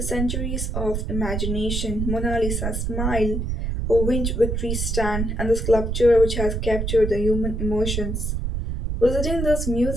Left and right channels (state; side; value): noise; right; rumble, 2 dB below the sound